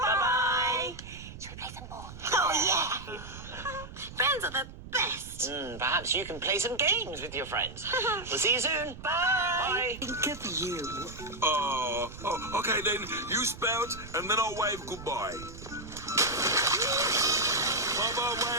Should we play some more? Oh, yeah. Friends are the best. Perhaps you can play some games with your friends. We'll see you soon. Bye. Think of you. Okay then. You spout, and then I'll wave goodbye. Bye-bye,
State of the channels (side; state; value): right; noise; rumble, 14 dB below the sound